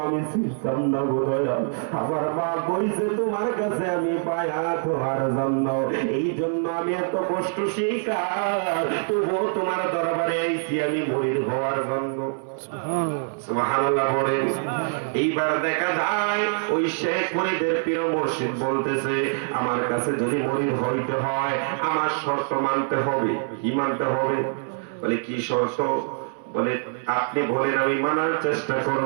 আমি চিনতাম না গো দয়াল, আমার মা কইছে তোমার কাছে আমি পায়া তোমার জন্য, এই জন্য আমি এত কষ্ট শিকার, তবুও তোমার দরবারে আইছি আমি মুরিদ হওয়ার জন্য। সুবহানাল্লাহ বলেন। এইবার দেখা যায় ওই শেখ ফরিদের পীর মুর্শিদ বলতেছে, আমার কাছে যদি মুরিদ হইতে হয় আমার শর্ত মানতে হবে। কি মানতে হবে? বলে কি শর্ত? বলে আপনি বলেন আমি মানার চেষ্টা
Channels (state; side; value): silent; left; 60 dB below the other